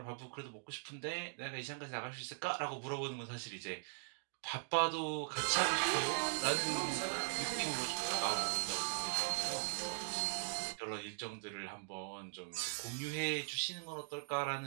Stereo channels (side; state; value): left; silent; digital silence